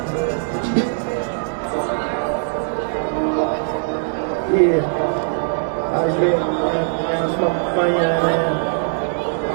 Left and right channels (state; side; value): silent; left; digital silence